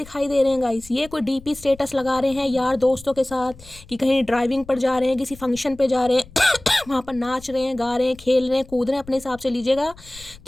दे रहे हैं गाइस, ये कोई डीपी स्टेटस लगा रहे हैं यार दोस्तों के साथ, कि कहीं ड्राइविंग पर जा रहे हैं, किसी फंक्शन पे जा रहे हैं, वहाँ पर नाच रहे हैं, गा रहे हैं, खेल रहे हैं, कूद रहे हैं, अपने हिसाब से लीजिएगा,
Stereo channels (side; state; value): left; noise; rumble, 20 dB below the sound